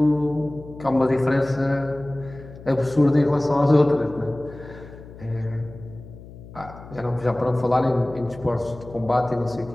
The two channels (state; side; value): noise; left; hum, 17 dB below the sound